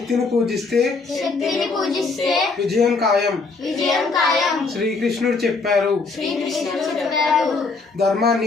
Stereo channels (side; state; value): right; quieter; 4.2 dB